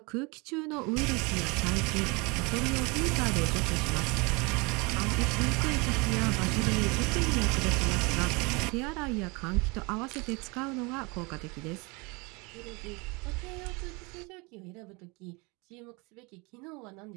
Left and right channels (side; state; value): left; quieter; 27.9 dB